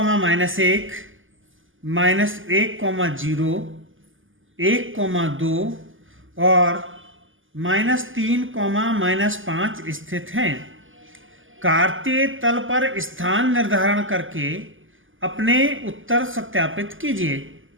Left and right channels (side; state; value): left; late; 0.58 ms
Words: -1,0, 1,2 और -3, -5 स्थित हैं? कार्तीय तल पर स्थान निर्धारण करके अपने उत्तर सत्यापित कीजिए।